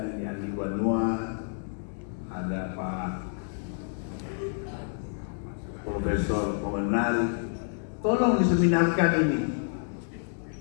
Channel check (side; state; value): right; silent; digital silence